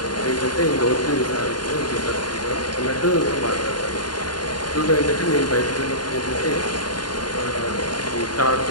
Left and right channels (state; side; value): late; right; 0.70 ms